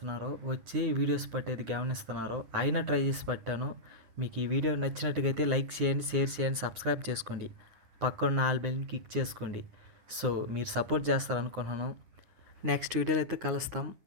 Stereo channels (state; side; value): late; left; 9.7 ms